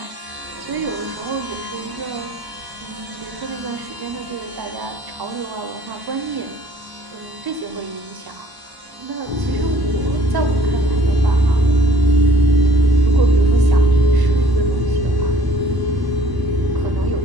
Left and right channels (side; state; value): left; late; 1.0 ms